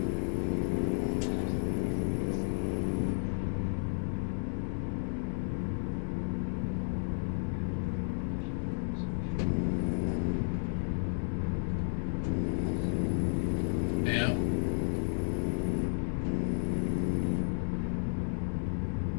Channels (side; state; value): right; silent; digital silence